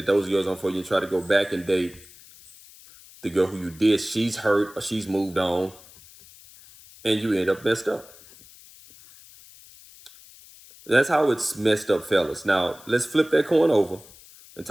those girls aren't for you and try to go back and date the girl who you did, she's hurt or she's moved on, and you end up messed up. That's how it's messed up, fellas. Now, let's flip that coin over and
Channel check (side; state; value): left; noise; hiss, 22 dB below the sound